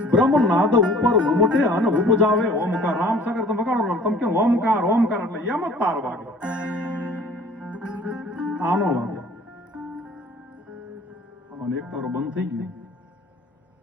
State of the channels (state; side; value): normal; both; correlation 0.51